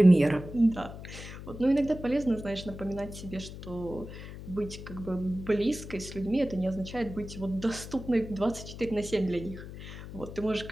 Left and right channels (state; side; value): noise; left; hum, 12 dB below the sound